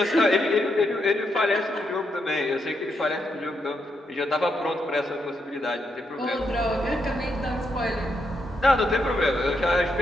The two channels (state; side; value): normal; both; correlation 0.80